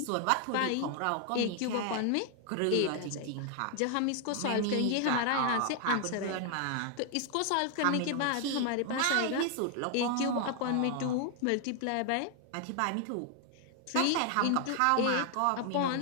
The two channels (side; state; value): both; different; correlation 0.00